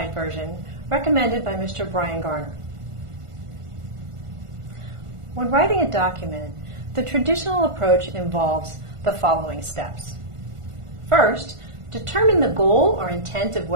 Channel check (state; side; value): late; left; 1.5 ms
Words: version recommended by Mr. Brian Garner. When writing a document, the traditional approach involves the following steps. First, determine the goal or intent of